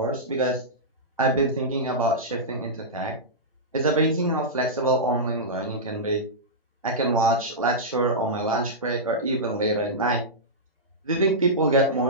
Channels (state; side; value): normal; both; correlation -0.13